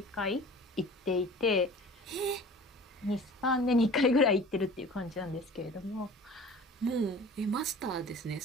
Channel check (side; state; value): both; normal; correlation 0.42